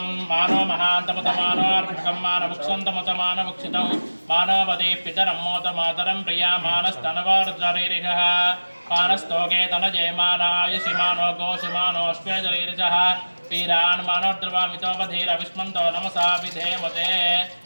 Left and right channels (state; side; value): inverted; both; correlation -1.00